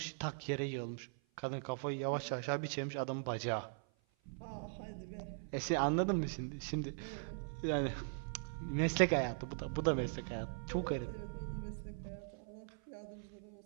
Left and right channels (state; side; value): silent; left; 51 dB below the other